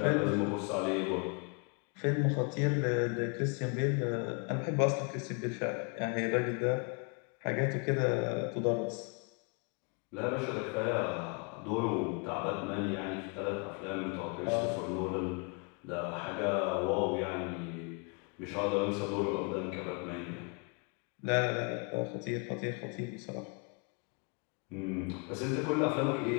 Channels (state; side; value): quieter; right; 35.2 dB